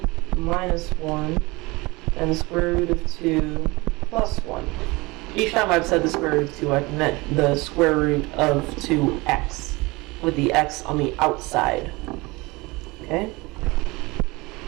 minus 1 and the square root of 2 plus 1. Each time I've said the square root of 2, I've meant the square root of 2x, with the x on the outside. Okay?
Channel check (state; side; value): quieter; left; 23.5 dB